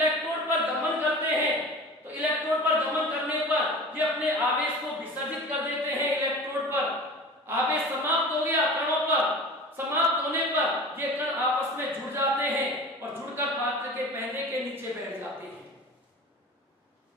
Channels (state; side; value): normal; both; correlation 0.37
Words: पर गमन करते हैं, तो इलेक्ट्रोड पर गमन करने पर ये अपने आवेश को विसर्जित कर देते हैं इलेक्ट्रोड पर। आवेश समाप्त हो गया कणों पर, समाप्त होने पर ये कण आपस में जुड़ जाते हैं और जुड़कर पात्र के पैदे के नीचे बैठ जाते हैं।